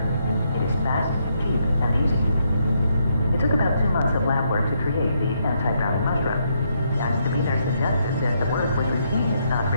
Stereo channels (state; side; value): inverted; both; correlation -0.76